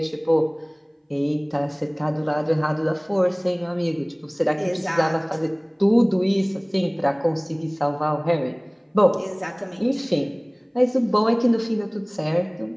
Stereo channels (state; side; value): identical; both; correlation 1.00